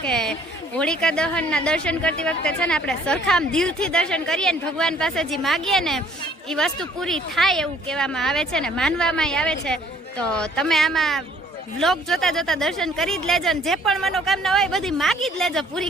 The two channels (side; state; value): both; normal; correlation 0.59